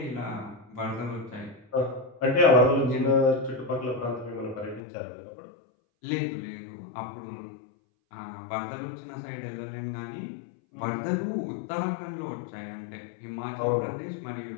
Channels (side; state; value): right; drops out; at 4.8 s